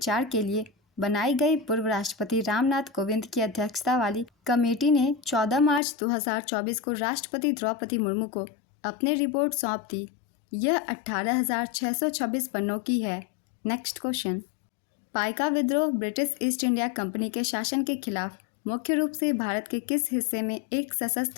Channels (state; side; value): drops out; right; at 5.8 s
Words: के लिए बनाई गई पूर्व राष्ट्रपति रामनाथ कोविंद की अध्यक्षता वाली कमेटी ने 14 मार्च 2024 को राष्ट्रपति द्रौपदी मुर्मू को अपनी रिपोर्ट सौंप दी। यह 18,626 पन्नों की है। नेक्स्ट क्वेश्चन, पाइका विद्रोह ब्रिटिश ईस्ट इंडिया कंपनी के शासन के खिलाफ मुख्य रूप से भारत के किस हिस्से में एक